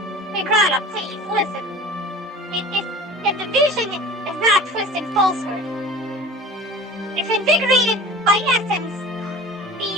Migrana, please, listen. If the vision is not twisted falsehood, if invigorated by essence, the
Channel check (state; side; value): normal; both; correlation 0.38